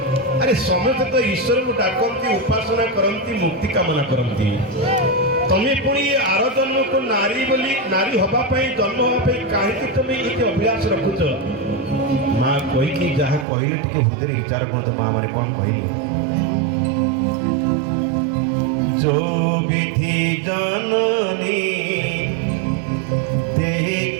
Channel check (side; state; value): left; drops out; at 13.5 s